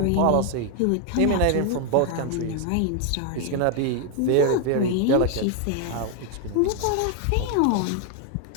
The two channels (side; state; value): both; different; correlation 0.00